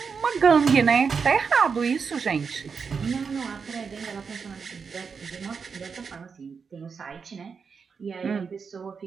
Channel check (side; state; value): left; quieter; 5.7 dB